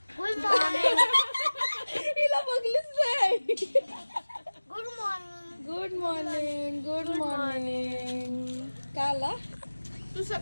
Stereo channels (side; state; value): both; inverted; correlation -1.00